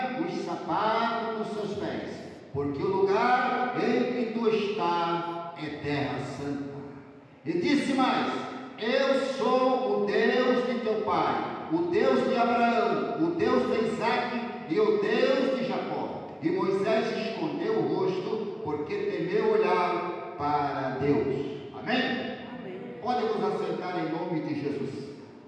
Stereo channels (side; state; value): both; identical; correlation 1.00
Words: os sapatos dos seus pés, porque o lugar em que tu estás é terra santa. E disse mais: eu sou o Deus de teu pai, o Deus de Abraão, o Deus de Isaque e o Deus de Jacó. E Moisés escondeu o rosto, porque temeu olhar para Deus. Amém? Amém. Podem nos assentar em nome de Jesus.